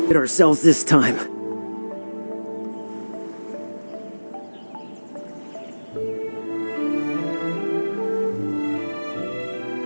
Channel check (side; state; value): both; inverted; correlation -1.00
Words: Hit ourselves this time.